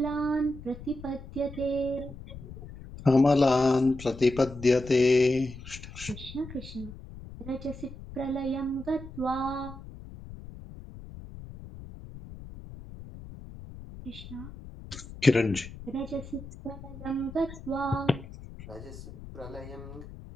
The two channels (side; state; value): left; noise; rumble, 14 dB below the sound